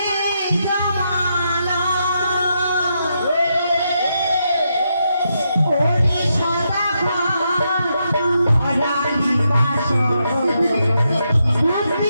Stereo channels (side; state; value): both; inverted; correlation -0.82